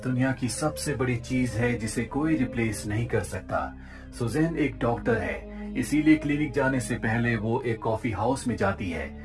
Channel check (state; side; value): identical; both; correlation 1.00